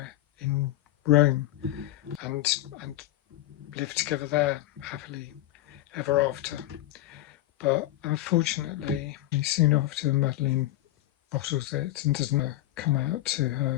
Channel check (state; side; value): quieter; right; 15.2 dB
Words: in Rome and live together there happily ever after. But unfortunately, soon after, Madeleine bottles it and doesn't come out to